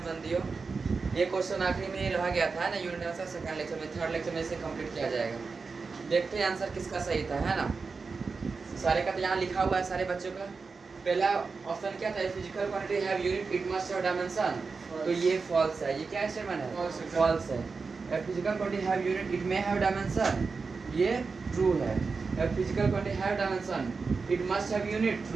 बंदियों, ये क्वेश्चन आखिरी में रह गया था ना यूनिट का सेकंड लेक्चर में, थर्ड लेक्चर में इसे कंप्लीट किया जाएगा। देखते हैं आंसर किसका सही था, है ना। सारे का तो यहाँ लिखा हुआ है सारे बच्चों का। पहला ऑप्शन क्या था, physical quantity have unit it must have dimension, तो ये फॉल्स है। ये क्या स्टेटमेंट है? फॉल्स है। Physical quantity have unit it may have dimension, ये ट्रू है। Physical quantity have dimension it must have unit,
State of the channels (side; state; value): left; quieter; 4.6 dB